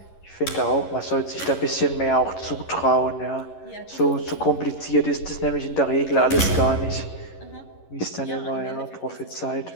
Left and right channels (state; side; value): late; right; 11 ms